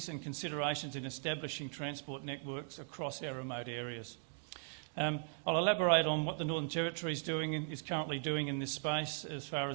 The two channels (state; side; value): silent; left; 52 dB below the other